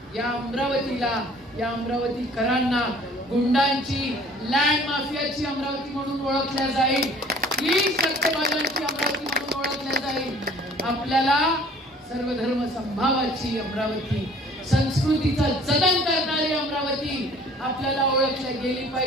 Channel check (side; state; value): both; normal; correlation 0.52